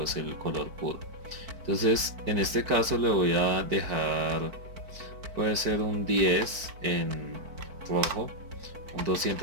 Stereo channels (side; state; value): left; late; 4.5 ms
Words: es el color puro. Entonces en este caso le voy a dejar, puede ser un 10 en rojo, un